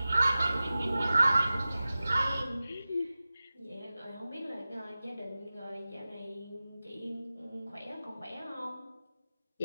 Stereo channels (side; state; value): both; inverted; correlation -0.96